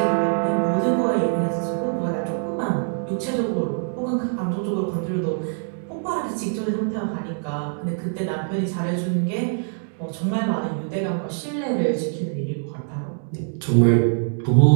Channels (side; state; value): left; silent; digital silence